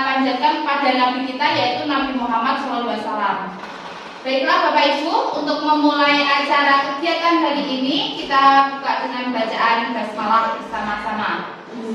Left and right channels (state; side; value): identical; both; correlation 1.00